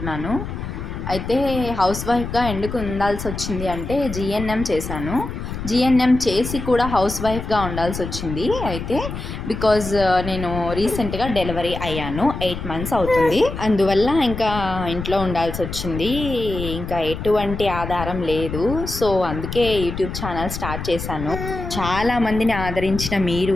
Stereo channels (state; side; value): noise; left; rumble, 7 dB below the sound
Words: అయితే హౌస్ వైఫ్గా ఎందుకు ఉండాల్సి వచ్చింది అంటే జీఎన్ఎం చేశాను. జీఎన్ఎం చేసి కూడా హౌస్ వైఫ్గా ఉండాల్సి వచ్చింది. అయితే బికాజ్ నేను రీసెంట్గా డెలివరీ అయ్యాను. 8 months అవుతుంది. అందువల్ల ఇంకా ఇంట్లో ఉండాల్సి వచ్చింది. ఇంకా ఎటువంటి ఆధారం లేదు. సో అందుకే యూట్యూబ్ ఛానల్ స్టార్ట్ చేశాను. చాలామందిని ఆదరించిన